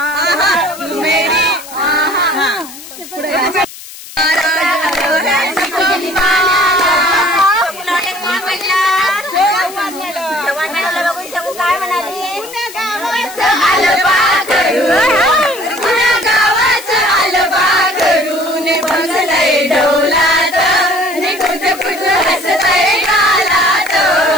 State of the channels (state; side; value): noise; left; hiss, 15 dB below the sound